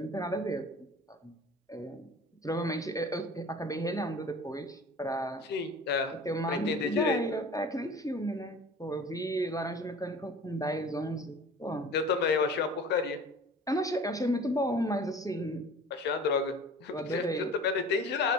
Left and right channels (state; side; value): normal; both; correlation 0.42